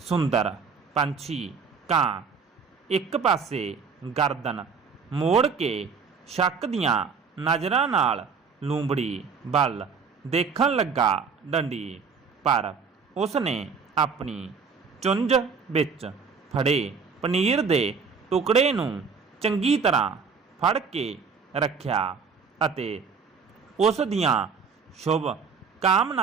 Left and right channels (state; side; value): quieter; left; 5.6 dB